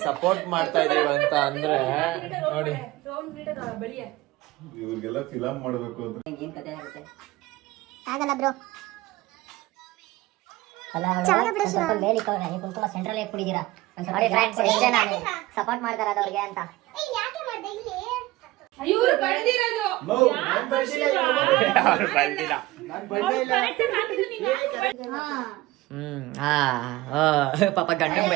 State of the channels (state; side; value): quieter; left; 18.4 dB